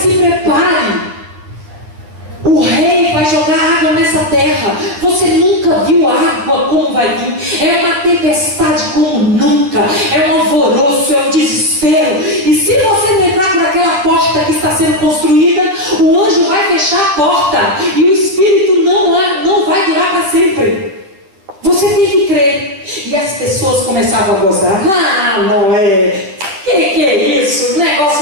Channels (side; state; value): left; late; 10 ms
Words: se prepare. O rei vai jogar água nessa terra. Você nunca viu água como vai vir. É uma tempestade como nunca. É um alvoroço, é um desespero. E se você não entrar por aquela porta que está sendo construída, o anjo vai fechar a porta. E o espírito não vai durar para sempre. Você tem que crer. E as pessoas começavam a gozar. Ah, Noé, que Que é isso?